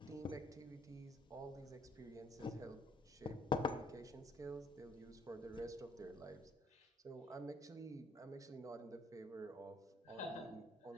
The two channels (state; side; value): normal; both; correlation 0.64